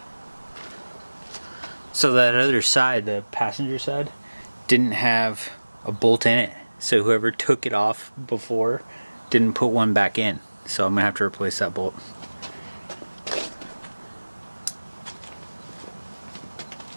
So that other side, the passenger side, didn't have a bolt in it, so whoever took it off before didn't put one back in, so I'm gonna have to replace that bolt.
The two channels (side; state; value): both; inverted; correlation -1.00